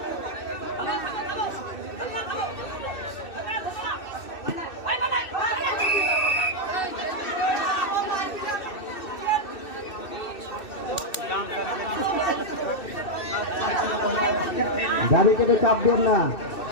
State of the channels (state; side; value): late; right; 2.6 ms